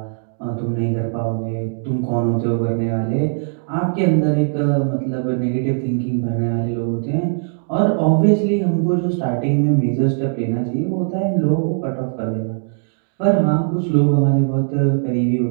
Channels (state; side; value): silent; left; digital silence